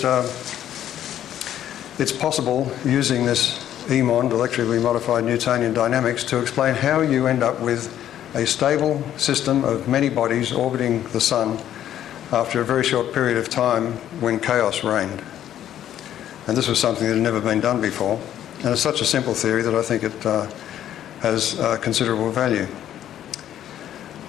it's possible, using this EMOND, electrically modified Newtonian dynamics, to explain how you end up with a stable system of many bodies orbiting the Sun after a very short period of time when chaos reigned. And this was something that had never been done before. And it's such a simple theory that I think it has considerable value.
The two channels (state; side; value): quieter; right; 11.2 dB